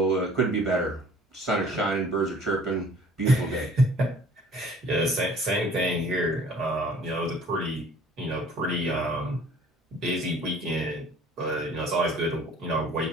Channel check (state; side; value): normal; both; correlation 0.52